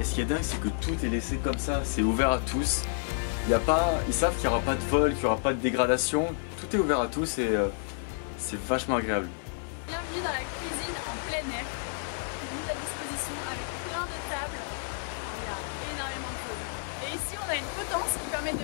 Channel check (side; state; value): right; silent; digital silence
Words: ce qui est dingue, c'est que tout est laissé comme ça, c'est ouvert à tous. Ils savent qu'il n'y aura pas de vol, qu'il n'y aura pas de dégradation, tout est ouvert à tous et c'est vachement agréable. Bienvenue dans la cuisine en plein air, mise à disposition avec plein de tables, enfin, il y a énormément de choses. Et ici on a une potence qui permet de